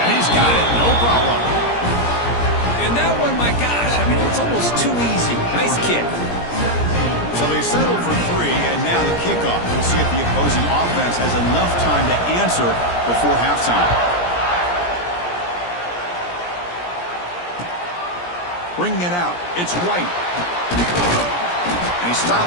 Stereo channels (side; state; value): right; late; 17 ms